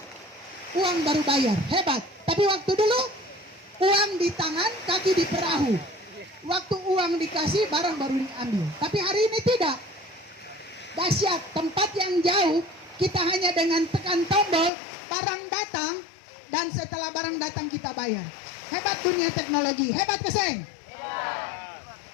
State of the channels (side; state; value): right; drops out; at 14.7 s